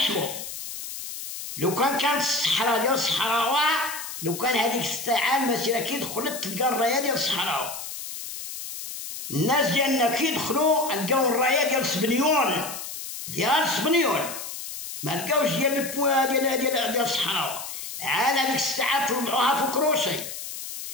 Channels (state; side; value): noise; left; hiss, 8 dB below the sound